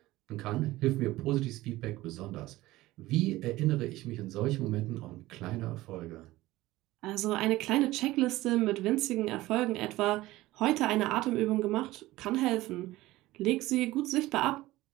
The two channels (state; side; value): quieter; left; 17.6 dB